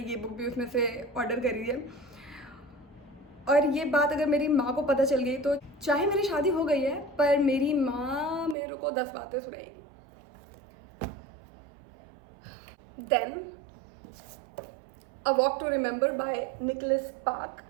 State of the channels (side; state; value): left; drops out; at 8.6 s